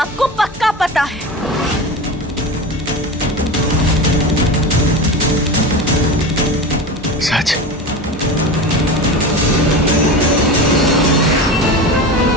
को पक्का पता है। सच?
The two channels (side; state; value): both; normal; correlation 0.27